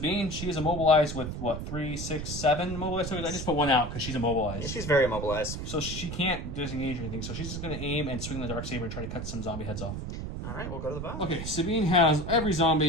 she is immobilized with, what, 3, 6, 7 immobilized tokens? I just put 1 out because she's immobilized. She's very immobilized. So she can't disengage or anything. So she's just going to aim and swing the Darksaber and try to cut some zombie heads off. All right, we'll go to the bottom. Okay, Sabine has every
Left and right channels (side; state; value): right; noise; rumble, 6 dB below the sound